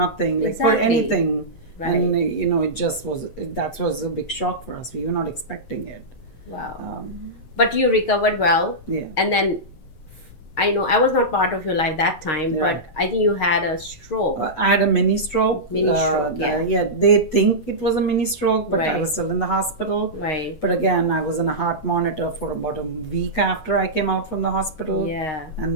like for anything, right. And it just that was a big shock for us. We were not expecting it. Wow. But you recovered well. Yeah. And then I know I was not part of your life that time, but I think you had a stroke. I had a mini stroke. Yeah. They think it was a mini stroke, but right. I was still in the hospital. Right. But again, I was on a heart monitor for about a week after I came out from the hospital. Yeah.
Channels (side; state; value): right; late; 8.0 ms